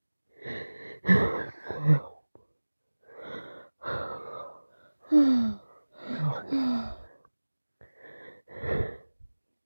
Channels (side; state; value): both; inverted; correlation -1.00